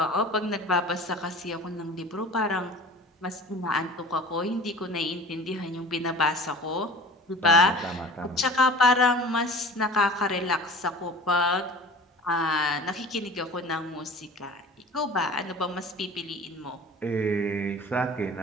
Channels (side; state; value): both; normal; correlation 0.41